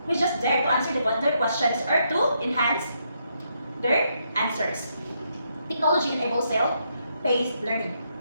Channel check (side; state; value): both; inverted; correlation -0.77